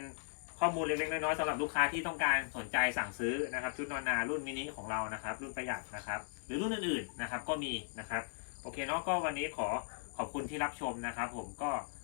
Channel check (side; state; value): right; silent; digital silence